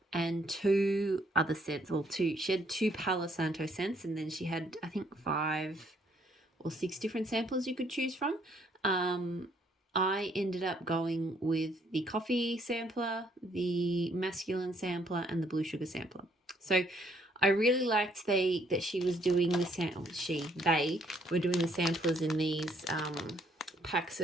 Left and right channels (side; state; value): both; normal; correlation 0.67